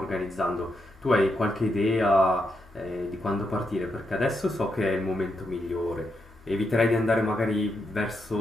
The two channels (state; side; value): normal; both; correlation 0.82